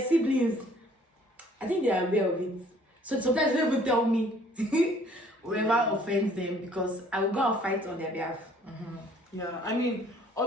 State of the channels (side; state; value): both; normal; correlation 0.58